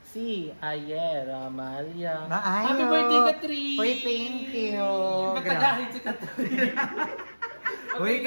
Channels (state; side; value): inverted; both; correlation -1.00